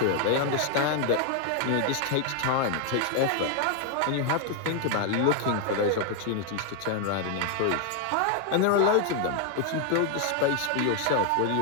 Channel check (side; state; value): both; different; correlation 0.01